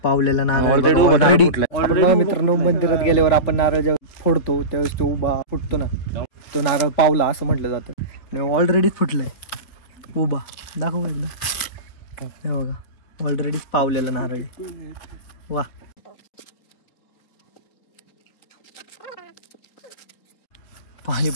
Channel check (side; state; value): right; late; 4.5 ms